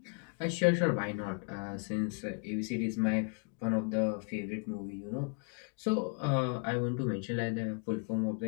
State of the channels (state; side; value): quieter; right; 34.3 dB